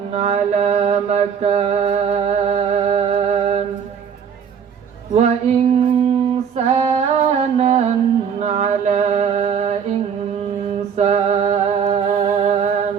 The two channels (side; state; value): left; quieter; 7.3 dB